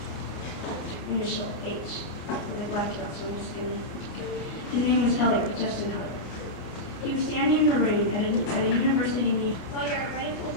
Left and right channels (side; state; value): right; late; 29 ms